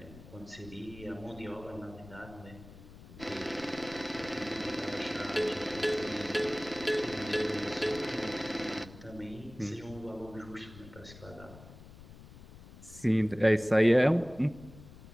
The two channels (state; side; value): noise; left; rumble, 18 dB below the sound